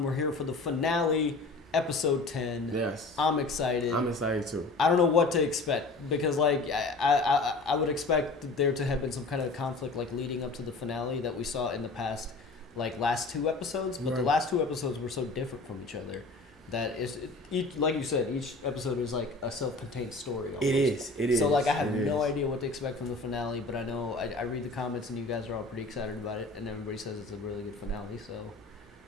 We're here for the finale, Episode 10. Yes. I'm excited. I'm excited too. I don't know what to expect because, like, I would expect there to have been some kind of conflict, like, leading up to the finale that we saw in the past, like, last two episodes. But the last two episodes were so different from each other. That is, like you said, each episode is like a self-contained story. Almost. It is. So like I have no idea what to expect from the finale, but I know I read the comments and you guys are all pretty excited about it, and everybody says it's a really good finale. So,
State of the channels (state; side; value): quieter; right; 3.3 dB